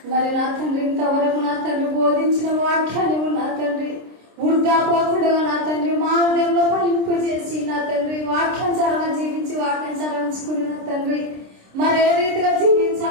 మరి నా తండ్రి ఇంతవరకు నా తండ్రి బోధించిన వాక్యాన్ని నా తండ్రి వృద్ధా పోకుండా నా తండ్రి మా హృదయంలో ఫలింపు చేసి నా తండ్రి వాక్యానుసారంగా జీవించి వాక్యానుసారించుకుని నా తండ్రి మరి ఏ రీతిగా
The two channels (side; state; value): left; late; 26 ms